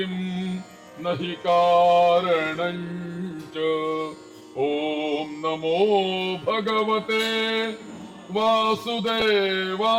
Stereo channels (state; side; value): identical; both; correlation 1.00